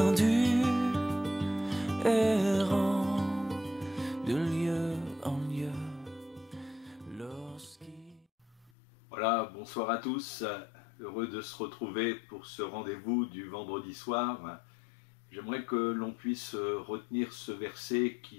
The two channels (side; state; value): right; drops out; at 8.7 s